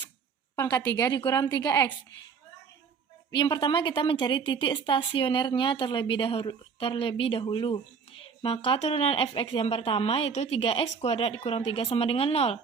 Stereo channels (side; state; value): left; quieter; 5.9 dB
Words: pangkat 3 dikurang 3X. Yang pertama kita mencari titik stasionernya terlebih dahulu. Maka turunan f(x) yang pertama yaitu 3x kuadrat dikurang 3 sama dengan 0.